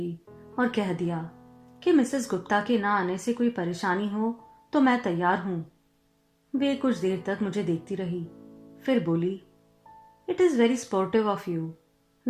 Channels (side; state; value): both; identical; correlation 1.00